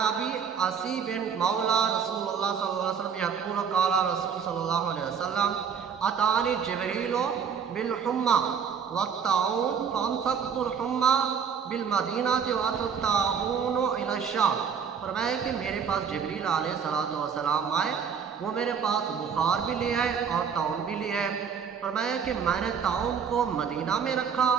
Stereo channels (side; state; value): left; quieter; 6.9 dB